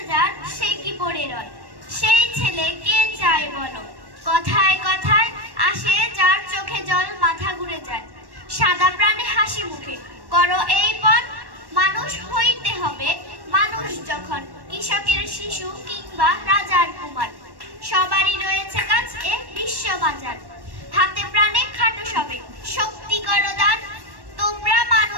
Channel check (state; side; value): late; left; 1.1 ms